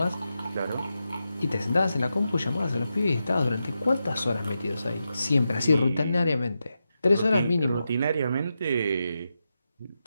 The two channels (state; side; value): inverted; both; correlation -0.88